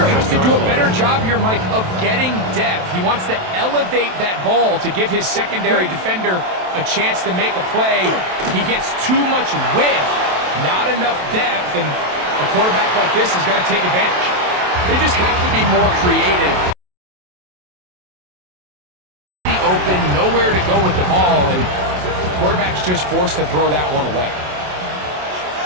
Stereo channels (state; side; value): late; left; 27 ms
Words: has to do a better job here, Mike, of getting depth. He wants to elevate that ball to give his secondary defender a chance to make a play. He gets too much width, not enough depth, and a quarterback like this is going to take advantage. They just have to be more creative. Open, nowhere to go with the ball, and the quarterback's just forced to throw that one away.